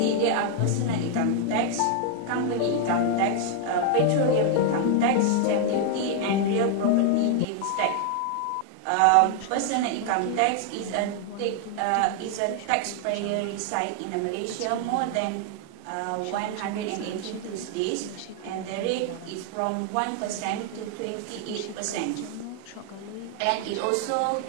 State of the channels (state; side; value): different; both; correlation 0.00